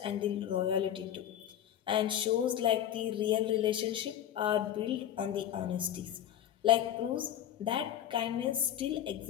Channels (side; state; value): right; quieter; 10.7 dB